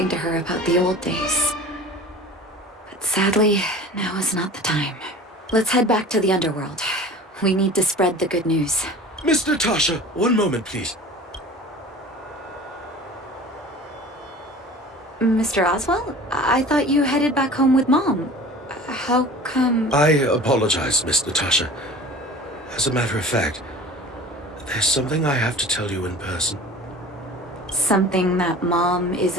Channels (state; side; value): normal; both; correlation 0.41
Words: to her about the old days. But sadly, now is not the time. Let's head back to the underworld. We need to spread the good news. Miss Natasha, one moment, please. Mr. Oswald? I thought you headed back home with Mom. How come... I apologize, Miss Natasha. As a matter of fact, there's something I have to tell you in person. Something that Mom